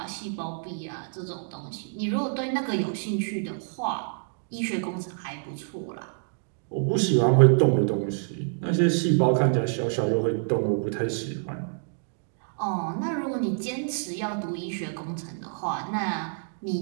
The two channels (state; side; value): silent; left; digital silence